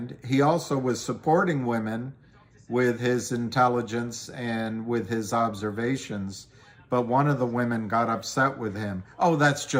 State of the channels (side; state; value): both; identical; correlation 1.00